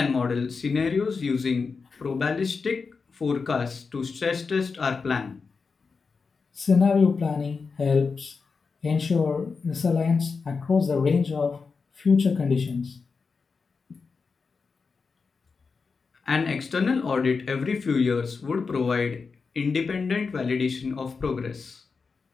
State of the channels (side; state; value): right; quieter; 4.9 dB